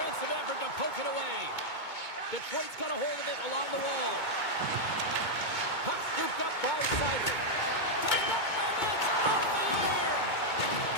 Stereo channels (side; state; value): right; late; 2.2 ms